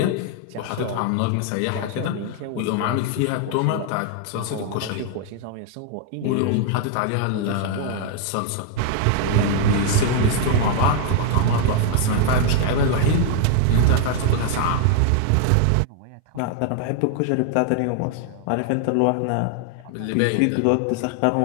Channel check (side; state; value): both; different; correlation 0.00